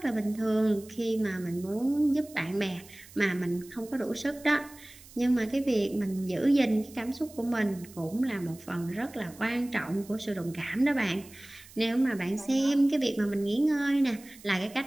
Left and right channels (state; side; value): noise; right; hiss, 21 dB below the sound